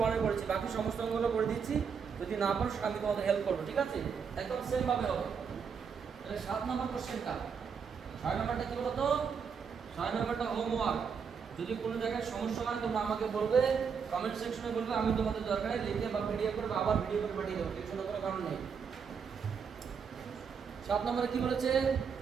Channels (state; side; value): quieter; left; 6.4 dB